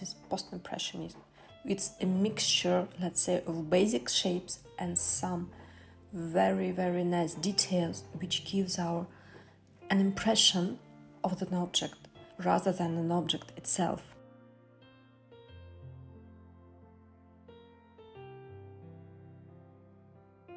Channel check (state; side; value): identical; both; correlation 1.00